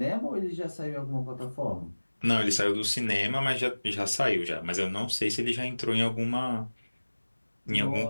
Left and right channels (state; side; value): inverted; both; correlation -1.00